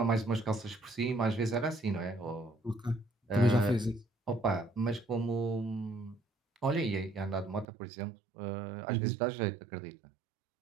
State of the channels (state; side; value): drops out; left; at 7.7 s